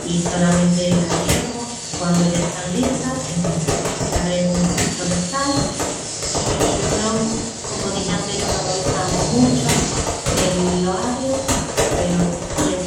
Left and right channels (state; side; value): identical; both; correlation 1.00